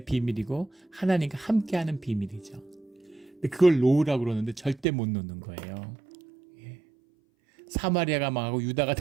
비밀이고 하나님과 함께하는 비밀이죠. 근데 그걸 놓으라고 그러는데 절대 못 놓는 거예요. 사마리아가 망하고 유다가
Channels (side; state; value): left; drops out; at 4.9 s